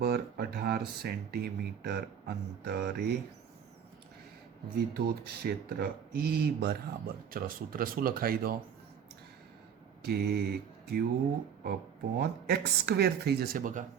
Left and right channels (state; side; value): quieter; left; 8.1 dB